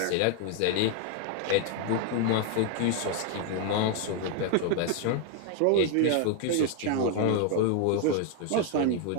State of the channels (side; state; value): both; different; correlation 0.00